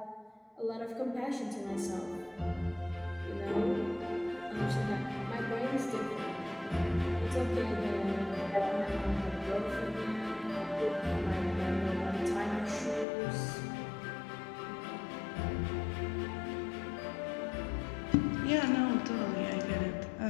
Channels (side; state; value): right; drops out; at 13.1 s